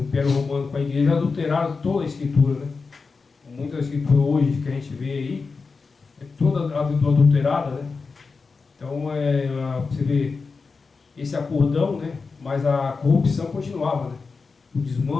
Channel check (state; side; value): quieter; right; 4.5 dB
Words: Império Romano com a igreja adulteraram toda a escritura, né? Muita escritura hoje que a gente vê aí é toda adulterada, né? Então você vê esse acordão, né? Mas a corrupção continuava, né? O